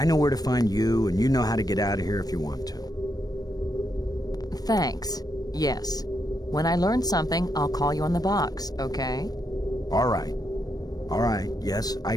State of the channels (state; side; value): late; right; 0.19 ms